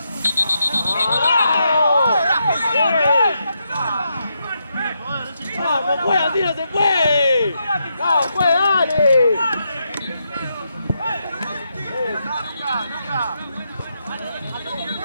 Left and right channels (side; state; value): both; inverted; correlation -0.82